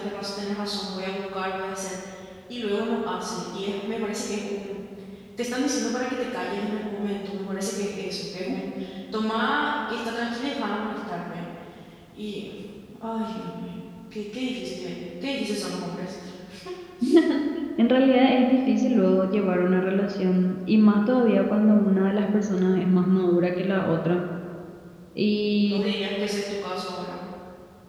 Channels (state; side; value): identical; both; correlation 1.00